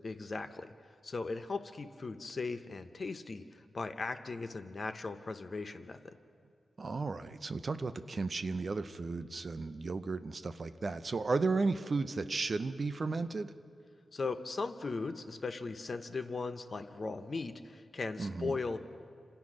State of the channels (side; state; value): both; normal; correlation 0.90